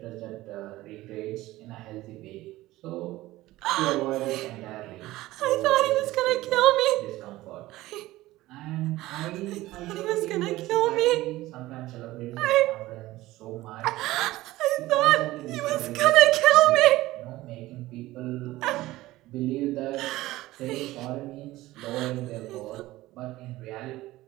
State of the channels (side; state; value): left; quieter; 17.4 dB